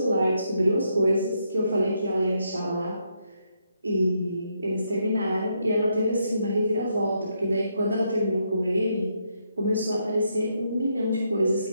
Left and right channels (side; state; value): both; inverted; correlation -0.78